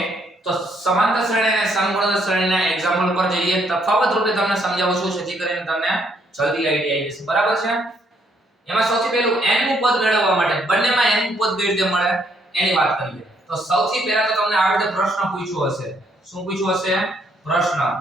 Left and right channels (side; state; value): both; normal; correlation 0.70